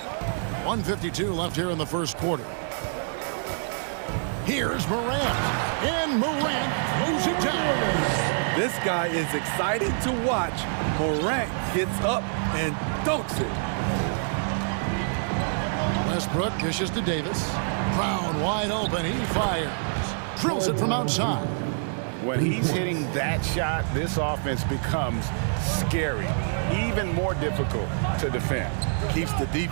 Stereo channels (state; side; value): silent; left; digital silence